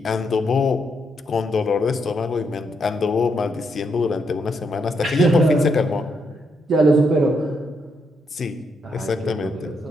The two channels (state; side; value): normal; both; correlation 0.78